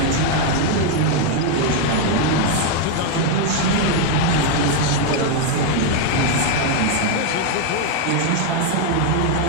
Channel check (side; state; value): both; different; correlation 0.00